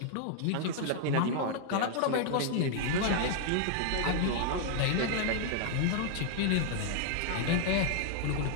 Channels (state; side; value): different; both; correlation 0.00